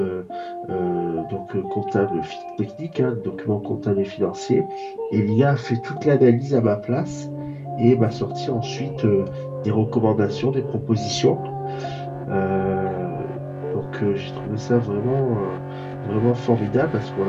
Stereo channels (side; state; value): both; identical; correlation 1.00